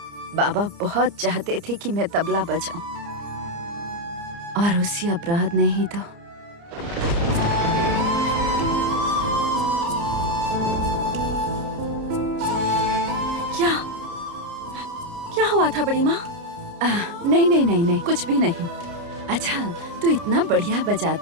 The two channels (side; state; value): left; late; 29 ms